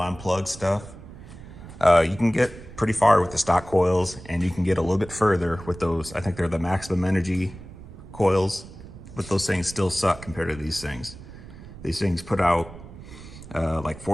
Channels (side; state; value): right; noise; rumble, 16 dB below the sound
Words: stuff. You can get pretty far with the stock coils, and you can get a little bit further with those. I think they're the maximum energy coils, but those things still suck compared to these things. These things put out like